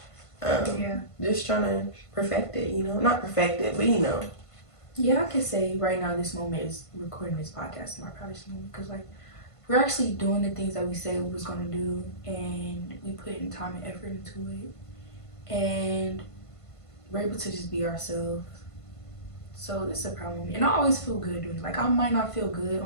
Just trying to perfect it, you know. Not perfect it, but you know. Yeah, I can say right now this moment is recording this podcast my proudest moment because like we're actually doing the things that we said we was going to do and we put in time and effort into it and we're able to just be ourselves. So it's a proud moment. And I always feel good doing it. Like I might not feel good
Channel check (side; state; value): right; late; 1.5 ms